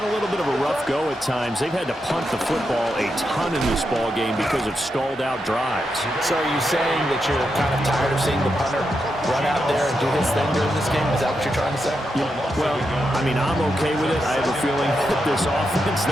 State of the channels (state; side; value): normal; both; correlation 0.85